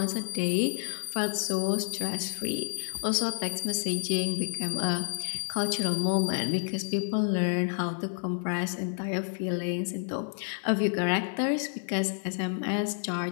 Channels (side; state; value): right; silent; 55 dB below the other